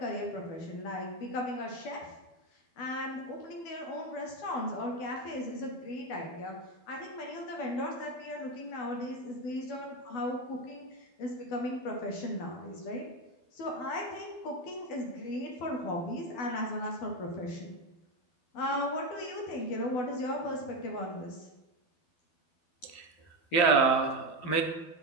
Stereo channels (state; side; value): late; right; 12 ms